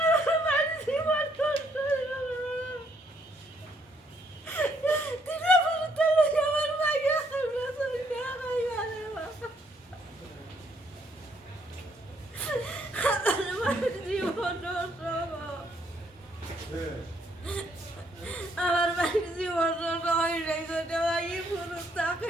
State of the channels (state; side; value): normal; both; correlation 0.70